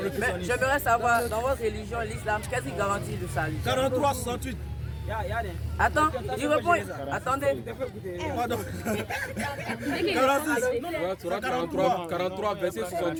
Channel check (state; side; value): identical; both; correlation 1.00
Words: j'aimerais savoir, dans votre religion, l'islam, qu'est-ce qui garantit le salut? 43-68. Attends, il répond. Attendez. Pardon. 43, verset